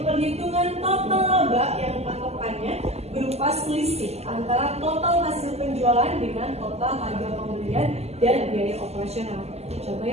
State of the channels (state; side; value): late; left; 0.30 ms